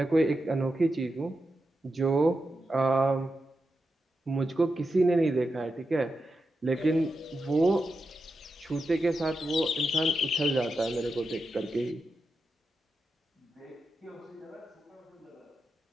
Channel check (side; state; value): both; normal; correlation 0.88